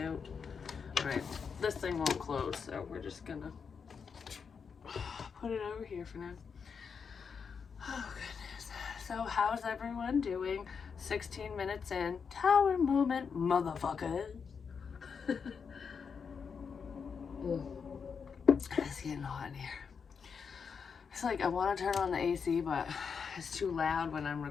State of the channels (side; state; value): right; quieter; 6.1 dB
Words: All right, this thing won't close, so we're just gonna put it over here for now. Oh goodness. So how's everyone doing? 16 minutes in. Tower moment, motherfuckers. It's getting hot in here. It's like I want to turn on the AC, but it's too loud when I'm